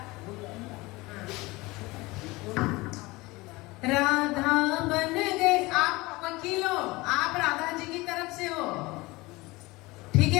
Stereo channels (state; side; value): quieter; right; 22.0 dB